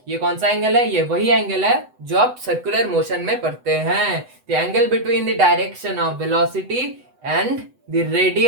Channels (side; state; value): left; late; 8.0 ms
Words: ये कौन सा एंगल है? ये वही एंगल है जो आप सर्कुलर मोशन में पढ़ते हैं। The angle between the direction of velocity and the